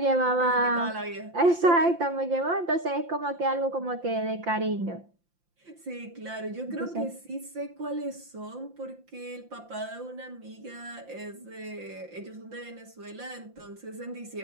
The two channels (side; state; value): left; late; 5.8 ms